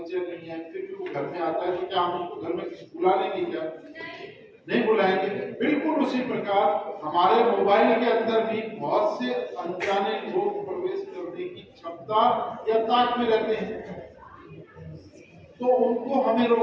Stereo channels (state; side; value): identical; both; correlation 1.00